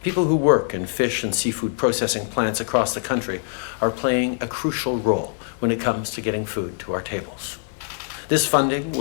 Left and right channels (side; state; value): right; silent; 63 dB below the other